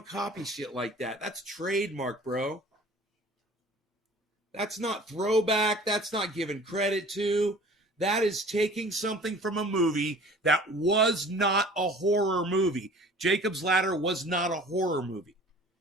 copy shit like that. That's trademark, bro. That's not throwback. That's not given credit to. That is taking something from a movie that was not a horror movie. Jacob's Ladder was not a horror movie.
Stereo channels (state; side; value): normal; both; correlation 0.47